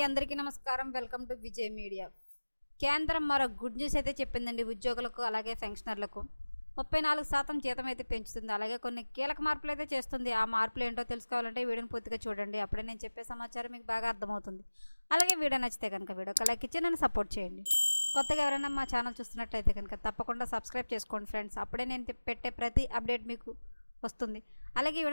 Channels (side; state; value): both; inverted; correlation -1.00